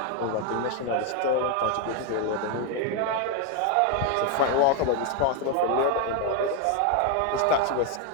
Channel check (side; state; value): both; different; correlation 0.01